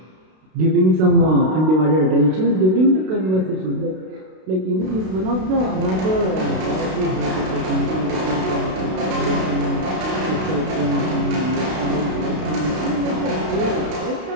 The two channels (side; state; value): left; late; 32 ms